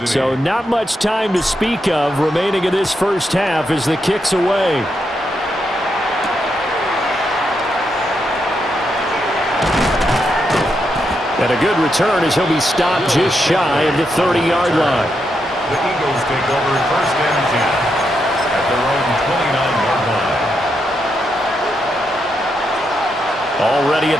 So not much time to speak of remaining in this first half as the kick's away. And a good return as he'll be stopped just shy of the 30-yard line. The Eagles take over first and 10 at their own 29-yard line. Already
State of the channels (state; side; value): normal; both; correlation 0.82